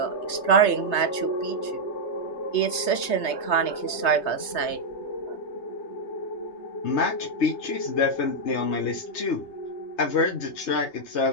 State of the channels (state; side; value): late; right; 3.3 ms